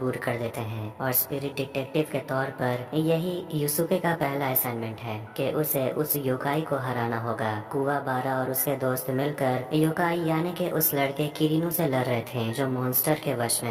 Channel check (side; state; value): both; identical; correlation 1.00